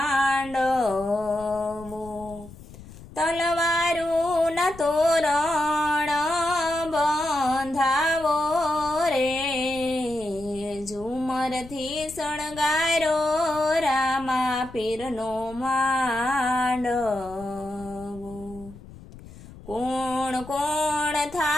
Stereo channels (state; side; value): noise; left; rumble, 18 dB below the sound